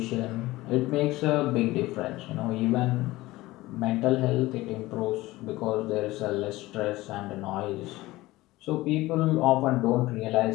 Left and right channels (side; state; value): right; quieter; 18.6 dB